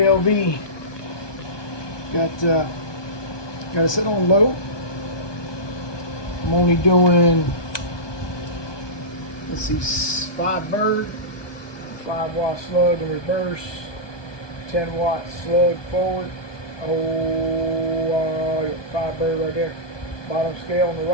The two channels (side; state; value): right; late; 1.2 ms